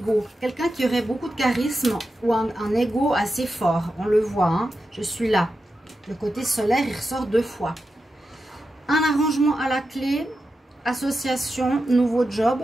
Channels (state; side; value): normal; both; correlation 0.89